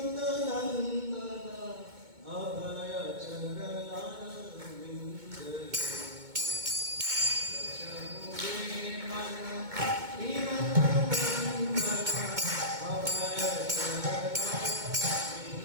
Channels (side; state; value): left; late; 2.2 ms